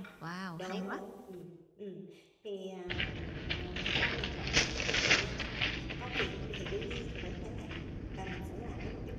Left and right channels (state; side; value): identical; both; correlation 1.00